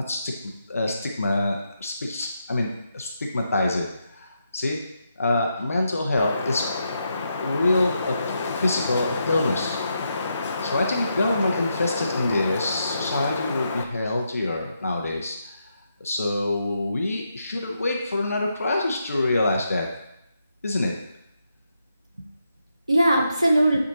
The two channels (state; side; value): inverted; both; correlation -0.82